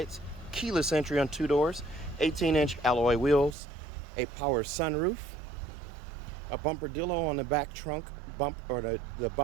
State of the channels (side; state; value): left; drops out; at 3.6 s